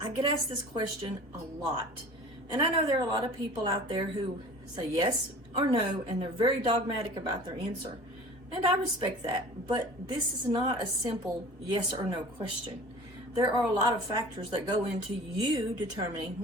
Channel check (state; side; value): late; left; 2.2 ms